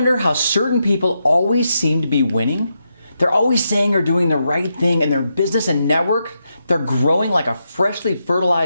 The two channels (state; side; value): inverted; both; correlation -0.84